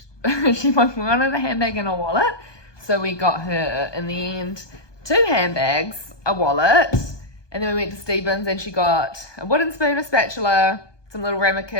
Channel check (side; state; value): right; late; 1.2 ms